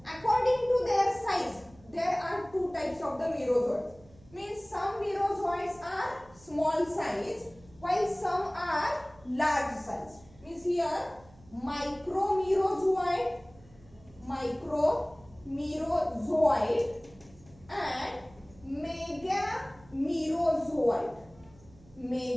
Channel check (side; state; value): right; noise; hum, 25 dB below the sound